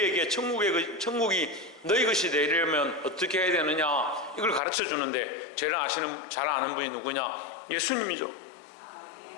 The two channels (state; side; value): drops out; right; at 4.6 s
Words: 천국이 너희 것이 되려면 어떻게 해야 되느냐, 이걸 가르쳐 주는데 제일 잘 아는 분이 누구냐? 예수님이죠.